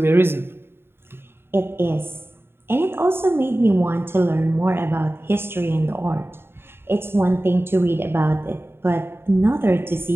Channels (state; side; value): late; left; 0.11 ms